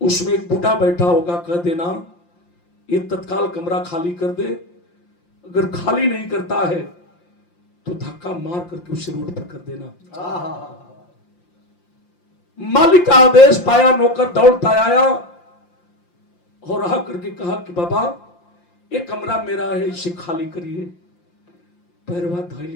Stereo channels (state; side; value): late; right; 5.7 ms